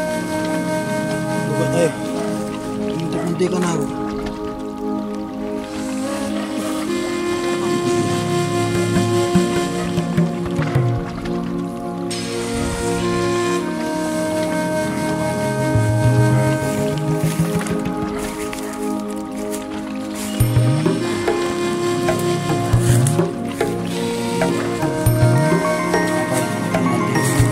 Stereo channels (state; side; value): identical; both; correlation 1.00